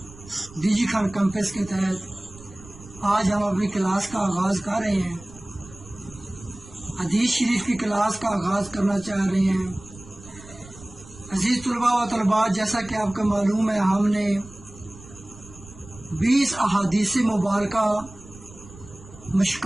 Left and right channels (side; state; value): right; noise; rumble, 19 dB below the sound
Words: D G Khan campus کے تحت آج ہم اپنی کلاس کا آغاز کر رہے ہیں. حدیث شریف کی کلاس کا آغاز کرنا چاہ رہے ہیں. عزیز طلباء و طالبات، جیسا کہ آپ کو معلوم ہے، ہم نے 20 احادیث مبارکہ